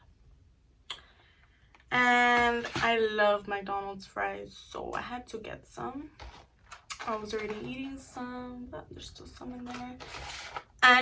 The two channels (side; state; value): both; identical; correlation 1.00